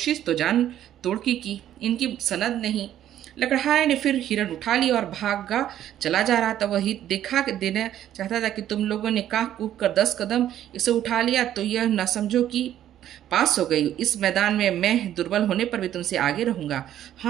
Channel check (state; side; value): quieter; left; 11.6 dB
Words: तो जान तोड़ की। इनकी सनद नहीं। लकड़हारे ने फिर हिरन उठा लिया और भागा चला जा रहा था। वह दिखा देना चाहता था कि तुम लोगों ने काह कूद कर 10 कदम इसे उठा लिया तो यह न समझो कि पास हो गई। इस मैदान में मैं दुर्बल होने पर भी तुमसे आगे रहूंगा।